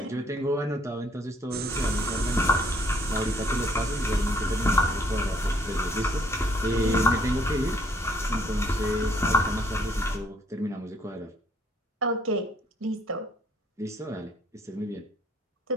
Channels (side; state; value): both; normal; correlation 0.64